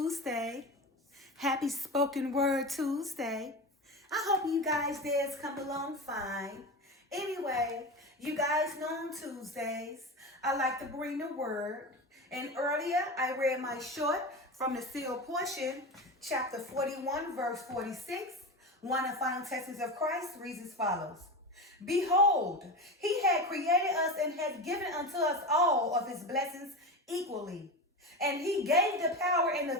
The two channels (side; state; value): both; normal; correlation 0.24